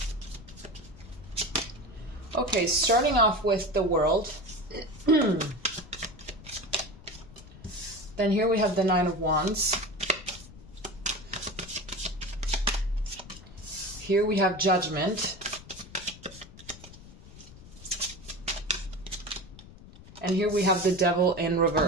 Okay, starting off with the World. Then here we have the Nine of Wands. Here we have Judgment. And here we have the Devil in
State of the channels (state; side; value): noise; left; rumble, 18 dB below the sound